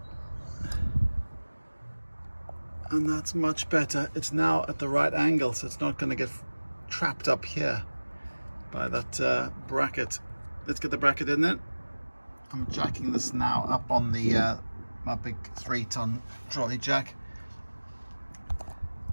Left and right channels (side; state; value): both; inverted; correlation -1.00